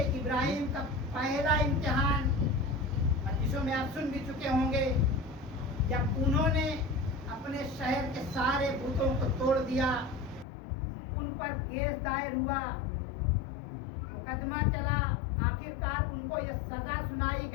इब्राहिम का पहला इम्तिहान मजलिसों में आप सुन भी चुके होंगे, जब उन्होंने अपने शहर के सारे बुतों को तोड़ दिया, उन पर केस दायर हुआ, मुकदमा चला, आखिरकार उनको ये सजा सुनाई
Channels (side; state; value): right; drops out; at 10.5 s